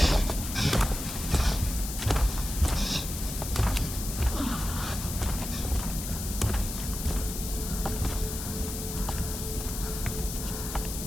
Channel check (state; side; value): noise; left; hiss, 7 dB below the sound